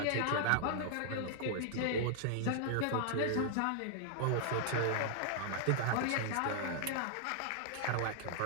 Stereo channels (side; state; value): both; different; correlation -0.01